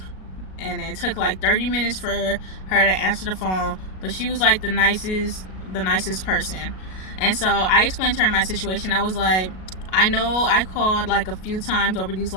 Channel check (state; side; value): late; right; 37 ms